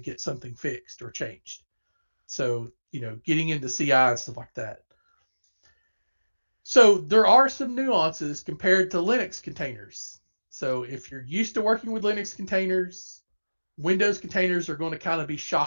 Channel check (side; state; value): both; inverted; correlation -1.00